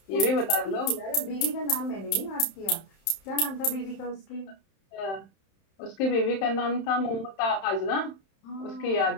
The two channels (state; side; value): late; right; 31 ms